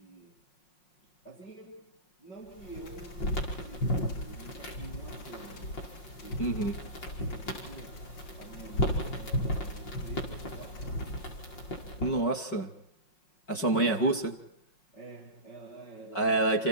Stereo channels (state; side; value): late; right; 5.5 ms